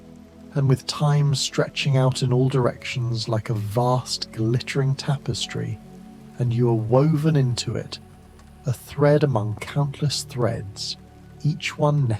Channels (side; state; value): both; identical; correlation 1.00